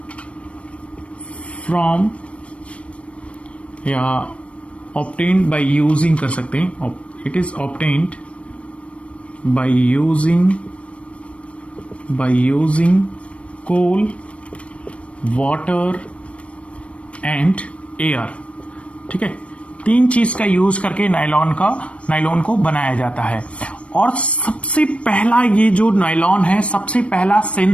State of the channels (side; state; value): right; late; 0.062 ms